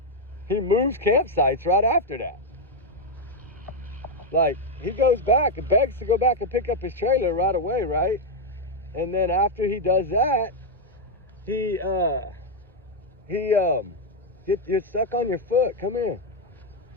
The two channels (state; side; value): normal; both; correlation 0.02